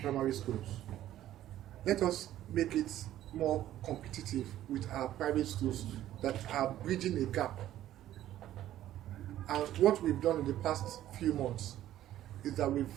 schools. Let us make it more competitive with our private schools that are bridging a gap. And what we've done in the past few months is that we've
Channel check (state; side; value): quieter; left; 13.0 dB